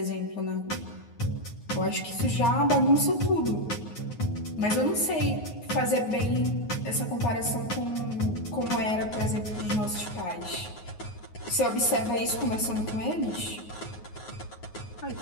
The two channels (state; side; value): late; right; 9.5 ms